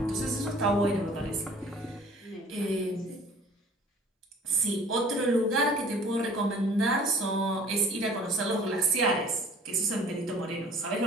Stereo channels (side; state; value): both; normal; correlation 0.50